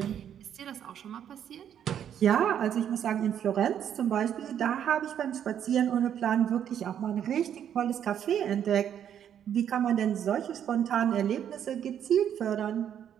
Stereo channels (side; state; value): left; quieter; 9.4 dB